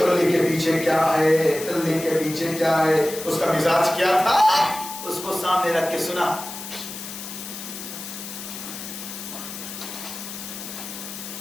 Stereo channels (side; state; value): left; noise; hiss, 10 dB below the sound